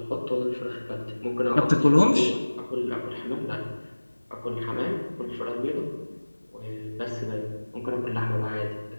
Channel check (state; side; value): inverted; both; correlation -1.00